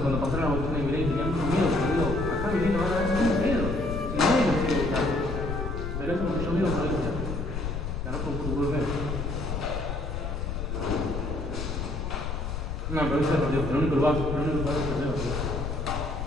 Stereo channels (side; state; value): left; noise; rumble, 4 dB below the sound